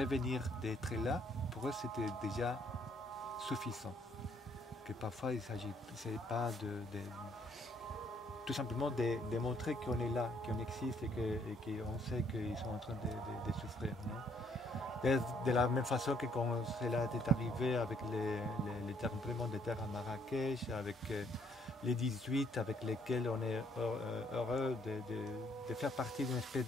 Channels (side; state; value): both; normal; correlation 0.67